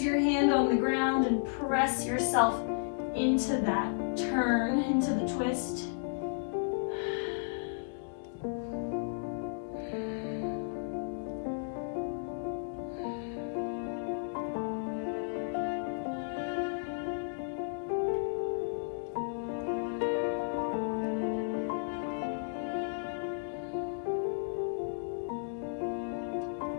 your hand on the ground and press yourself into that turn, into the twist.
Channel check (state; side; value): silent; right; digital silence